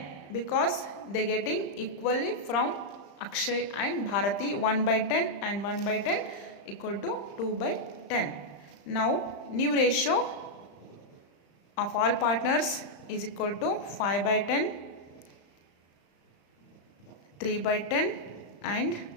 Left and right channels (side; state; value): right; late; 35 ms